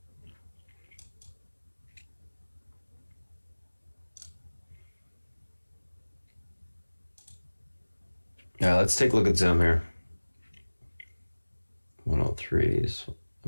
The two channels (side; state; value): both; inverted; correlation -1.00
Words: Yeah, let's take a look at Zoom here. 103s. I